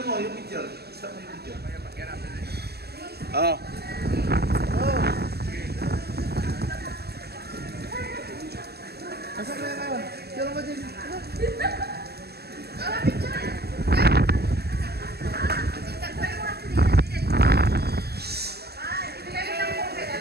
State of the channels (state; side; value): late; left; 0.47 ms